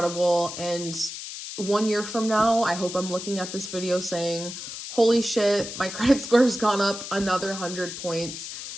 And 1 year from now, I hope I'm looking at this video saying, holy shit, my credit score has gone up another 100 points.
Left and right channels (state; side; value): noise; left; hiss, 9 dB below the sound